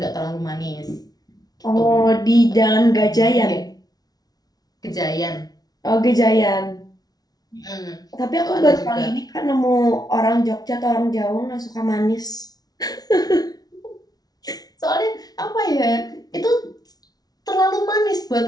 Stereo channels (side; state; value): right; late; 0.19 ms